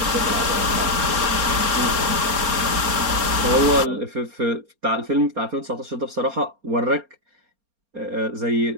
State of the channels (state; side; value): late; left; 4.3 ms